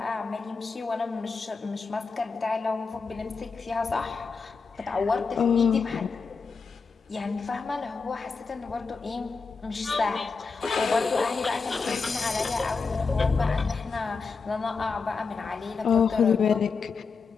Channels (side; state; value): right; quieter; 4.8 dB